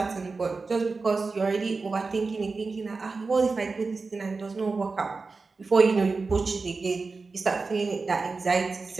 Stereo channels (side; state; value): left; quieter; 4.1 dB